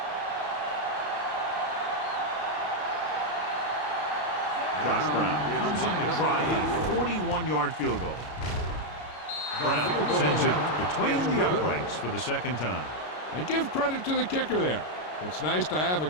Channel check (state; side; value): late; right; 33 ms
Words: Josh Brown comes in to try a 41-yard field goal. Brown sends it between the uprights for the 2nd time. And give credit to the kicker there. It's nice to have a